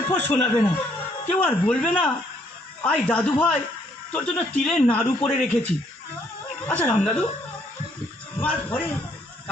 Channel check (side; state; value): both; normal; correlation 0.68